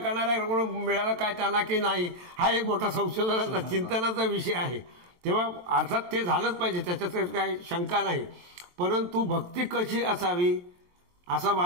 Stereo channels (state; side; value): late; left; 22 ms